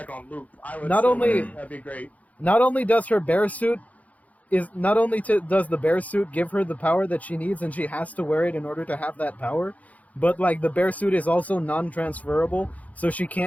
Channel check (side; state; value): right; late; 0.072 ms